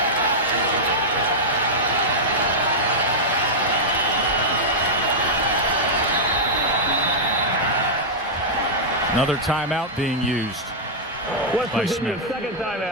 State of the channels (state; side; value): normal; both; correlation -0.08